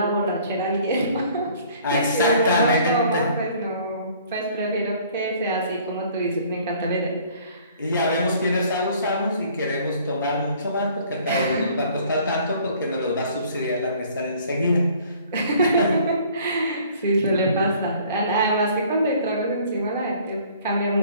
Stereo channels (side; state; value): both; inverted; correlation -0.55